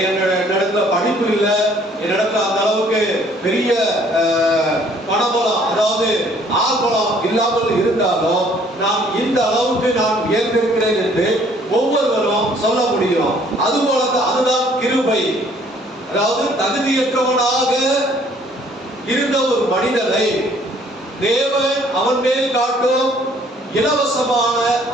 என்னிடத்துல படிப்பு இல்லை, என்னிடத்துல அந்த அளவுக்கு பெரிய பணபலம் அதாவது ஆள்பலம் இல்லாமல் இருந்தாலும் நான் இந்த அளவுக்கு நான் உயர்ந்திருக்கிறேன் என்று ஒவ்வொருவரும் சொல்ல முடியும். அதுபோலதான் அதுதான் கிருபை. அதாவது தகுதியற்றவனாக இருந்த ஒரு மனிதனை தேவன் அவன் மேல் காட்டும் இலவசமான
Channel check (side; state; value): both; normal; correlation 0.60